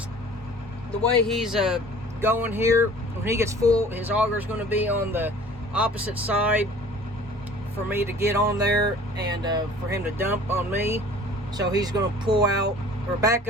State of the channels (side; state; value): both; normal; correlation 0.48